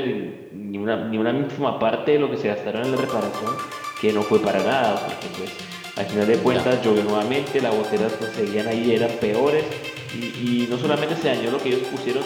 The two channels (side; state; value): both; identical; correlation 1.00